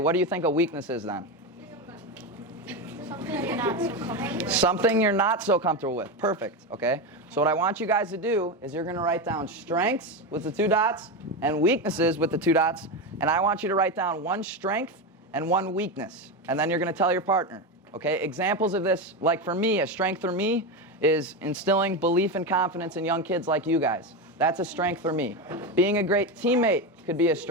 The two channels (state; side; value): normal; both; correlation 0.15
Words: do you think a weakness is then? Something you're not so comfortable with. Something you're not so comfortable with. Perfect, okay? So what I want you guys to do is you're going to write down strengths with the 2 dots and weaknesses with the 2 dots, and I want you to write down 1 strength and 1 weakness, and then you're going to tell your partner. Okay, examples of this, like for me, a strength for me is instilling belief and confidence in young kids like you guys. That's a strength for me. Being a great teammate could be a